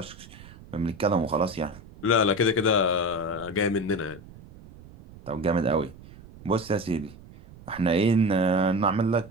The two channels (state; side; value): noise; right; rumble, 19 dB below the sound